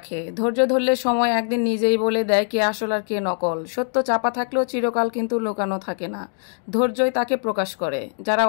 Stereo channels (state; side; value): silent; right; 64 dB below the other